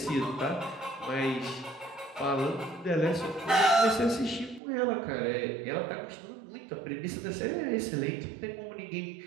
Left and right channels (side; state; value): left; drops out; at 4.6 s